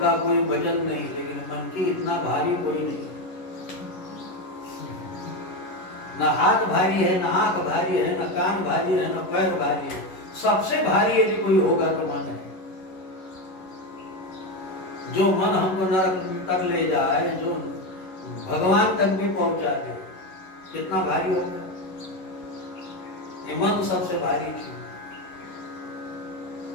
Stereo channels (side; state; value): right; late; 11 ms